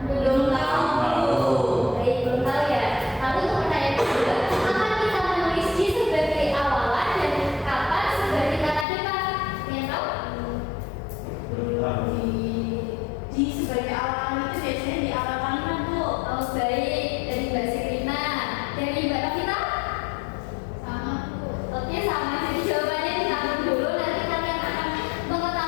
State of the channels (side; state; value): right; drops out; at 8.8 s